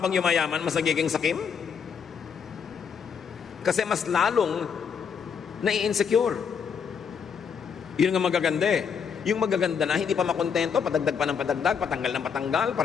yumayaman, mas nagiging sakim? Kasi mas lalong nai-insecure. Yun nga magaganda eh. Yung magaganda na, hindi pa makontento, padagdag pa ng padagdag, patanggal ng patanggal,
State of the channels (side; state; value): right; quieter; 6.8 dB